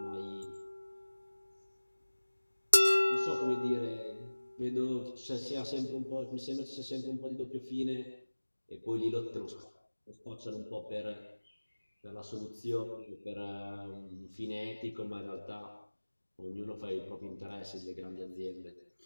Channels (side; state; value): both; inverted; correlation -1.00